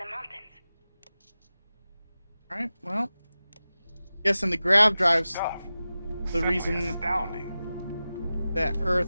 mountains. Alright, well. Guessing the grav drives the Simply reason astounding. that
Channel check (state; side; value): inverted; both; correlation -0.95